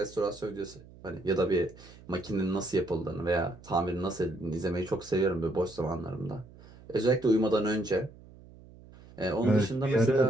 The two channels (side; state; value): right; noise; hum, 21 dB below the sound